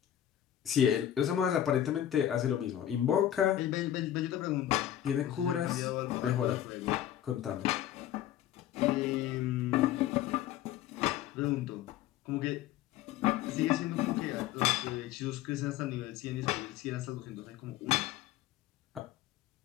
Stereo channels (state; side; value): quieter; right; 11.7 dB